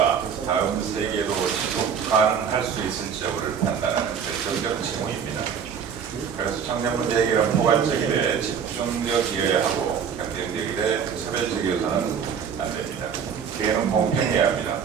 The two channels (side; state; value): left; quieter; 7.3 dB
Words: 다음 세계로 지속 가능할 수 있을지 여부를 판단하는 결정적 징후입니다. 그래서 청년 문제 해결은 포괄적이되 집중적이어야 하고 경쟁적이되 차별적이어서는 안 됩니다. 기회는 공평해야 합니다.